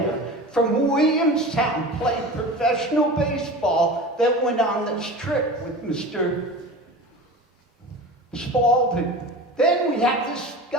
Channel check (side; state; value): both; normal; correlation 0.34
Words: from Williamstown, played professional baseball, that went on this trip with Mr. Spalding. Then we have this